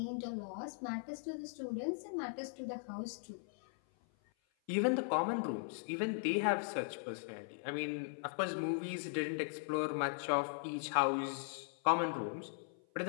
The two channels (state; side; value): silent; right; 52 dB below the other